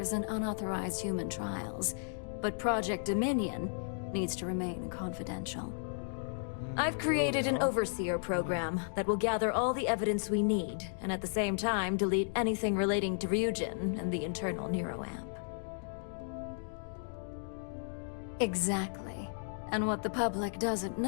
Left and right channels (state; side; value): silent; right; digital silence